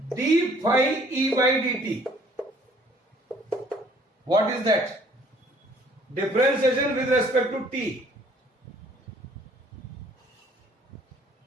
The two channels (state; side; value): normal; both; correlation 0.58